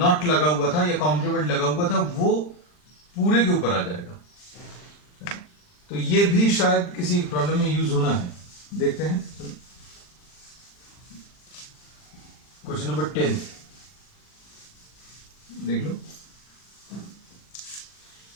लगा हुआ था या कॉम्प्लीमेंट लगा हुआ था वो पूरे के ऊपर आ जाएगा। तो ये भी शायद किसी प्रॉब्लम में यूज होना है, देखते हैं। क्वेश्चन नंबर 10 देख लो।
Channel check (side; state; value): right; late; 40 ms